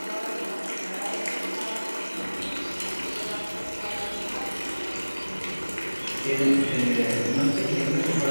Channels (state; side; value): inverted; both; correlation -1.00